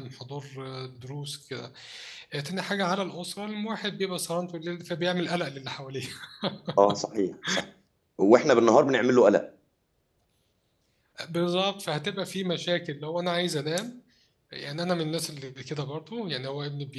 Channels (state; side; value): identical; both; correlation 1.00